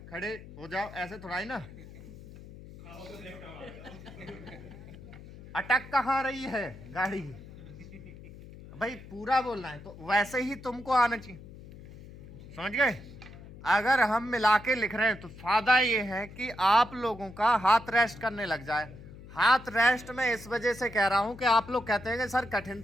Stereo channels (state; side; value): noise; left; hum, 16 dB below the sound